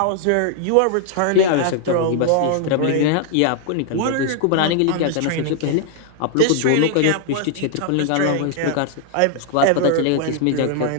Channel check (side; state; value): both; different; correlation 0.00